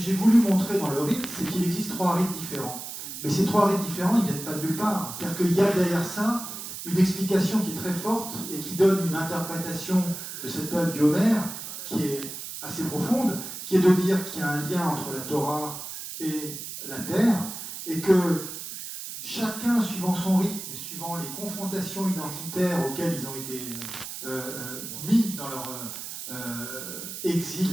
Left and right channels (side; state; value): right; noise; hiss, 9 dB below the sound